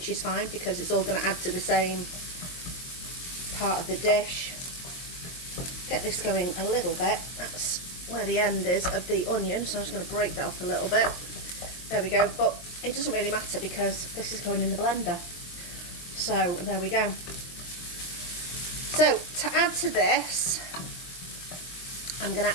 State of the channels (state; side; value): late; right; 23 ms